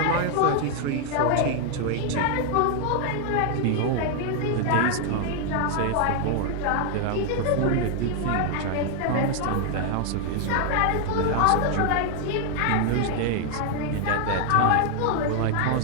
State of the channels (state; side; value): different; both; correlation 0.00